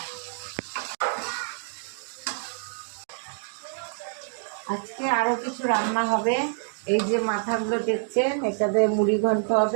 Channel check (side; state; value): left; silent; 60 dB below the other